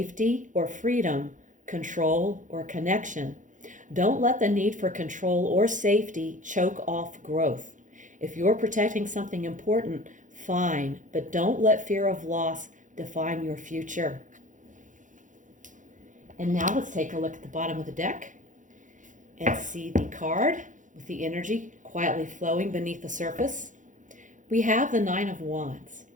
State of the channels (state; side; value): late; left; 0.37 ms